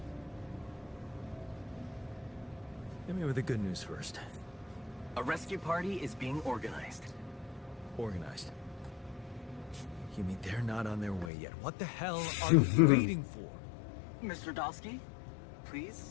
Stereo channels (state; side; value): drops out; right; at 11.3 s